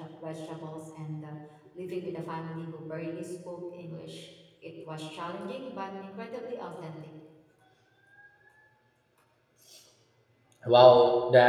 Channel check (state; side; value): identical; both; correlation 1.00